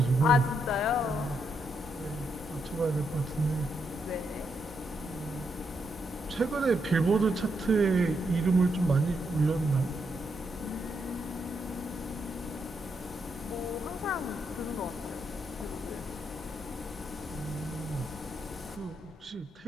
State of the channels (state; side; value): normal; both; correlation 0.79